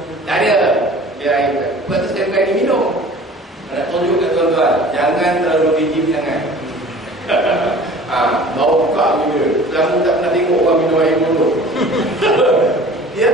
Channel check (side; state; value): both; normal; correlation 0.45